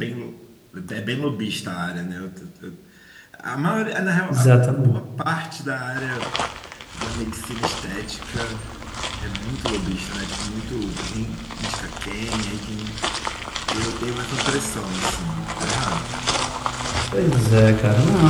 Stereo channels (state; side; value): identical; both; correlation 1.00